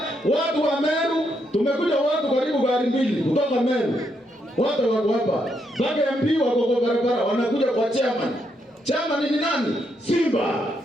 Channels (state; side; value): normal; both; correlation 0.78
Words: watu wa Meru, tumekuja watu karibu gari mbili kutoka Meru. Watu wako hapa. Mpaka MP wako kwa barabara wanakuja kwa chairman. Chairman ni nani? Simba.